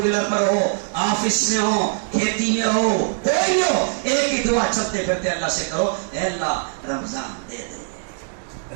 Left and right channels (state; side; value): silent; left; digital silence